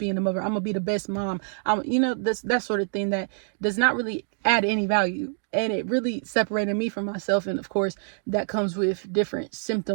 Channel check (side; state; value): left; silent; digital silence